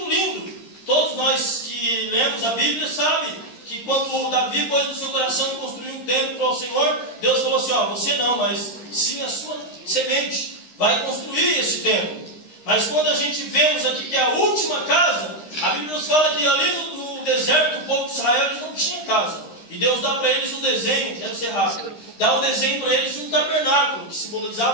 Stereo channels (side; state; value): right; late; 13 ms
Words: lindo. Todos nós que lemos a Bíblia sabem que quando Davi pôs no seu coração construir um templo para o Senhor, Deus falou assim: ó, você não, mas sim a sua semente vai construir esse templo. Mas quando a gente vemos aqui que é a última casa, a Bíblia nos fala que ali no deserto, o povo de Israel, eles não tinha casa. E Deus dá para eles um desenho, quero ser rápido, dá um desenho para eles de um tabernáculo, que